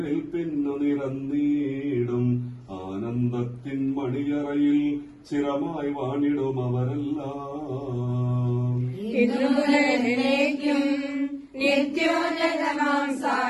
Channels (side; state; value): both; identical; correlation 1.00